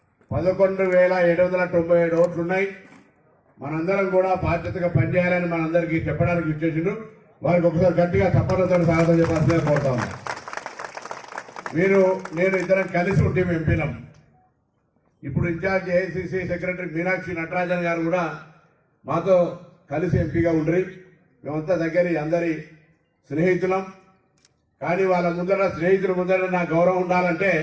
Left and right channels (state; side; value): identical; both; correlation 1.00